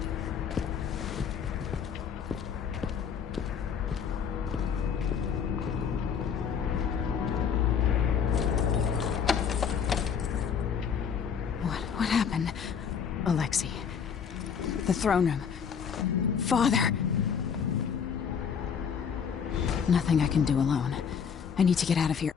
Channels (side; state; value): right; quieter; 7.1 dB